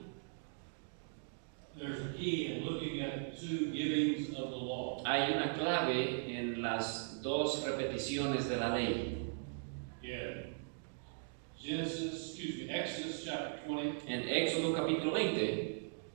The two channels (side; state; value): left; silent; digital silence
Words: There's a key in looking at two givings of the law. Hay una clave en las dos repeticiones de la ley. Exodus chapter 20, En Éxodo capítulo 20